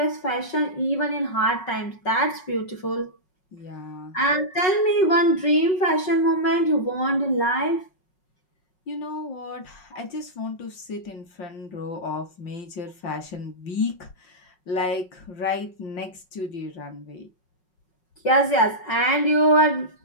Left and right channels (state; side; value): late; right; 5.4 ms